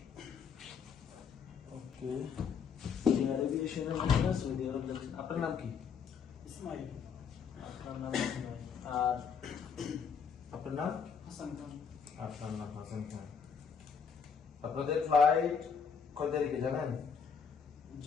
ওকে। এভিয়েশনের মধ্যে সৌদি আরব যাচ্ছেন। আপনার নাম কি? ইসমাইল। আপনার নাম ইসমাইল। আর আপনার নাম? হাসান খান। আপনার নাম হাসান খান। আপনাদের ফ্লাইট কত তারিখে জানেন?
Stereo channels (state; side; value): quieter; right; 6.5 dB